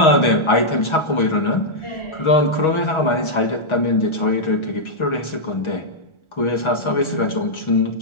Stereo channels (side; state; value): right; late; 1.4 ms